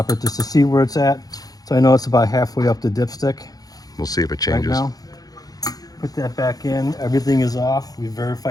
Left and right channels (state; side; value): late; right; 0.18 ms